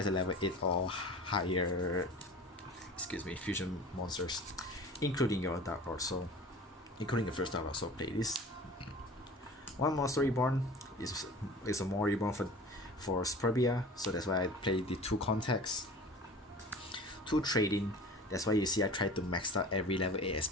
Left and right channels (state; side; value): normal; both; correlation 0.40